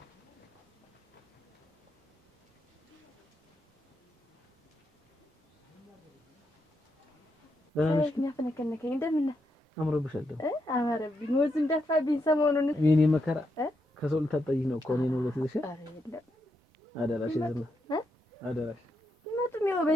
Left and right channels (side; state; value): both; normal; correlation 0.82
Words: የሚያፈነከነከኝ እንደምን አምሮብሻል ደግሞ አማረብኝ ወዝ እንደፋብኝ ሰሞኑን የኔ መከራ ከሰው ልታጠይኝ ነው እኮ እኔ ነው ለትልሽ አደራሽ ዝም አደራሽ መጡም ያው